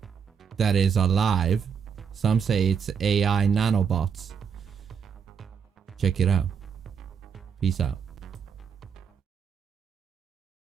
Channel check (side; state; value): left; quieter; 6.8 dB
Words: that is alive. Some say it's AI nanobots. Check it out. Peace out.